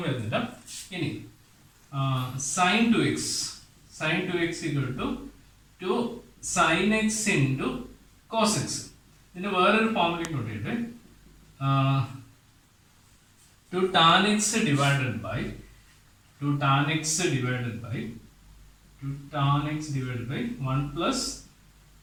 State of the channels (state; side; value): identical; both; correlation 1.00